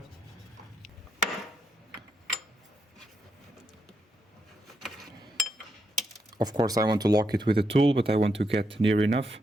Of course, I want to lock it with a tool, but I want to get near enough.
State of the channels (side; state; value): both; normal; correlation 0.81